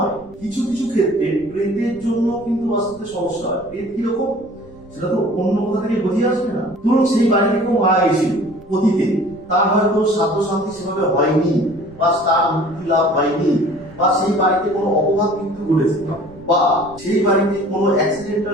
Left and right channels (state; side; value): noise; right; rumble, 25 dB below the sound